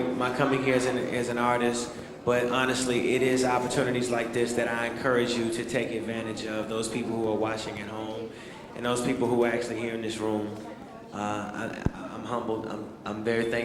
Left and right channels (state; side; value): identical; both; correlation 1.00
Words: coming here as an artist, but honestly, it is opportunities like this that I encourage you to take advantage of, those people who are watching at home, and those people who are actually here in this room. I'm humbled, I'm very